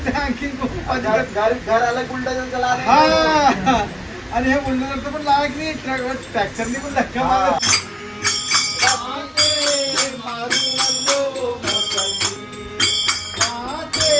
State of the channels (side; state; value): both; identical; correlation 1.00